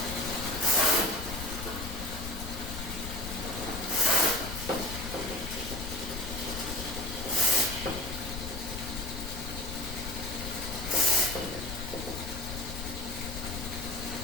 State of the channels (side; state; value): left; noise; rumble, 7 dB below the sound